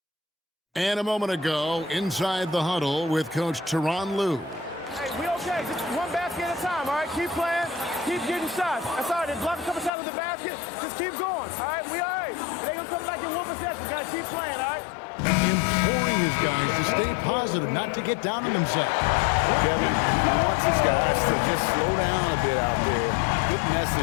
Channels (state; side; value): drops out; right; at 9.9 s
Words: And a moment ago, inside the huddle with Coach Tyronn Lue. Hey, we okay. Just one basket at a time, all right? Keep playing. Keep getting shots. That's all right. They block a couple shots with the basket. Just keep going, all right? We all right. It ain't going to come back in one possession. Got to keep playing, all right? Imploring his guys to stay positive, not to get down on themselves. Kevin, he wants his guys to just slow down a bit out there. Good